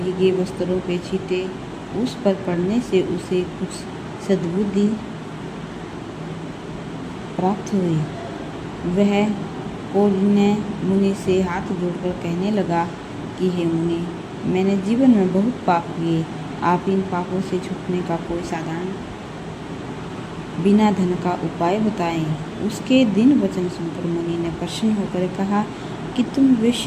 वस्त्रों के छींटे उस पर पड़ने से उसे कुछ सद्बुद्धि प्राप्त हुई। वह कौंडिन्य मुनि से हाथ जोड़कर कहने लगा कि हे मुनि, मैंने जीवन में बहुत पाप किए। आप इन पापों से छूटने का कोई साधारण बिना धन का उपाय बताएं। उसके दिन वचन सुनकर मुनि ने प्रसन्न होकर कहा कि तुम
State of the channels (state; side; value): identical; both; correlation 1.00